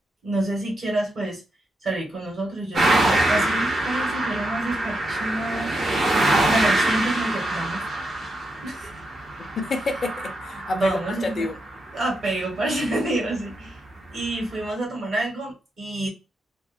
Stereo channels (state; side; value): normal; both; correlation 0.84